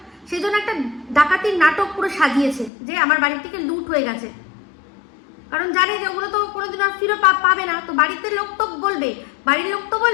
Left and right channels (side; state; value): right; drops out; at 2.7 s